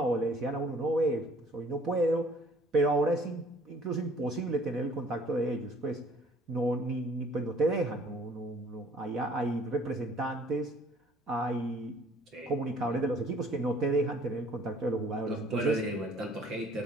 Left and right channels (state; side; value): normal; both; correlation 0.57